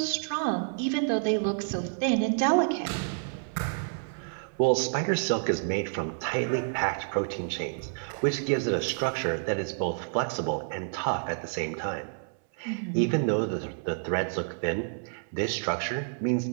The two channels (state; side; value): silent; left; 59 dB below the other